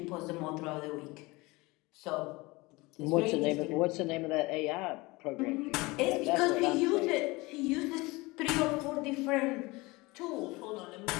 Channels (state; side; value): quieter; right; 23.1 dB